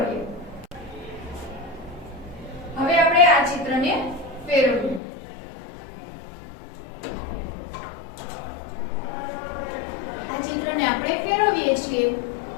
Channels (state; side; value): drops out; right; at 5.0 s